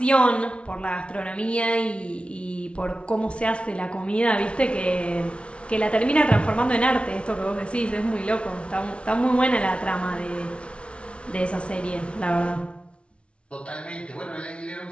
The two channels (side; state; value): right; late; 0.060 ms